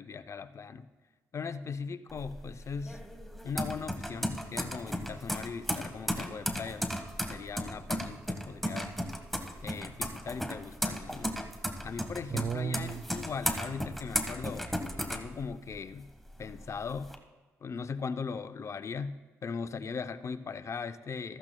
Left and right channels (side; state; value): both; normal; correlation 0.81